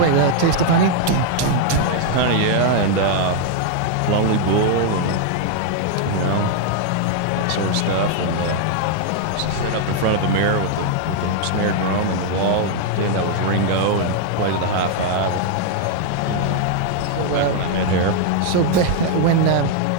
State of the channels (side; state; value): both; different; correlation 0.00